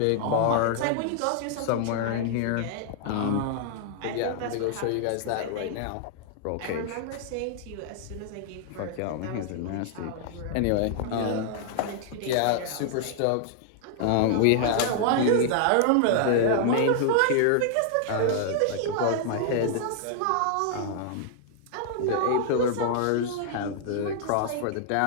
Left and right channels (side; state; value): both; different; correlation -0.01